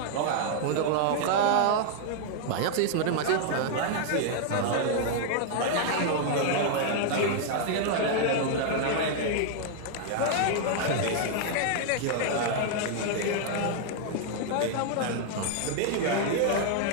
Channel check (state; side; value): different; both; correlation 0.00